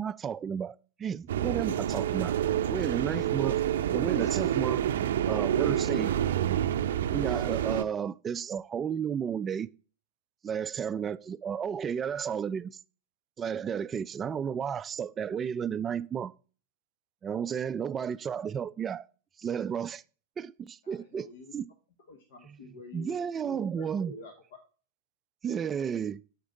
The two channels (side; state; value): left; quieter; 8.6 dB